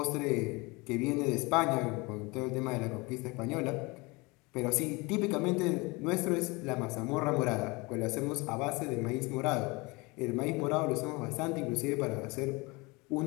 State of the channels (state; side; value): quieter; right; 25.7 dB